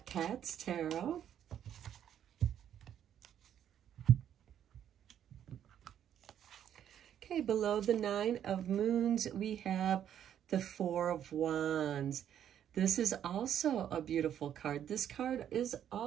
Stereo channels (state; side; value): quieter; left; 9.9 dB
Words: Cats Tarot. Okay, below the Nine of Moons, we have the Four of Wands. This is also a beautiful card. This card is